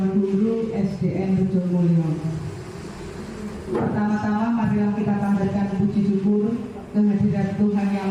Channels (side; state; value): both; identical; correlation 1.00